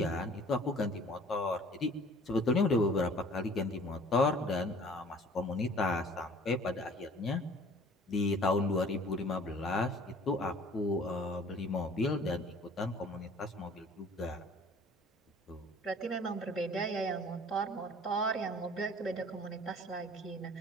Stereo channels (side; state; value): both; normal; correlation 0.50